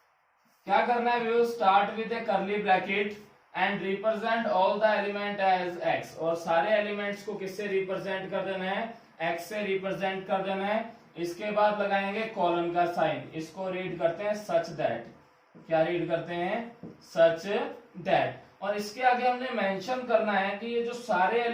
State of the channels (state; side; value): identical; both; correlation 1.00